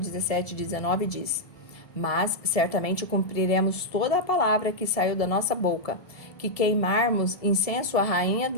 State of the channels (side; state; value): right; late; 1.7 ms